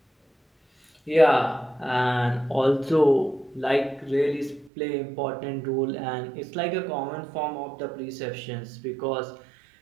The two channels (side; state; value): left; drops out; at 4.7 s